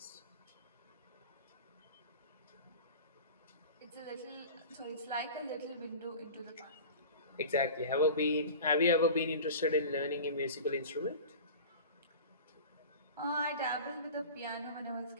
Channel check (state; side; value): inverted; both; correlation -0.36